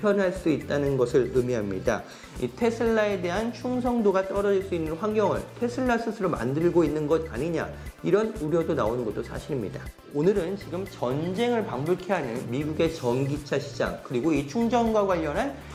수 있다는 것을 의미합니다. 이 테슬라에 대한 충성도가 떨어질 수 있는 환경을 테슬라 스스로 만들고 있는 것 아니냐, 이런 우려도 나오는 것도 사실입니다. 오늘은 지금 전쟁을 방불케 하는 미국의 전기차 시장, 그리고 이 충전과 관련한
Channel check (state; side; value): identical; both; correlation 1.00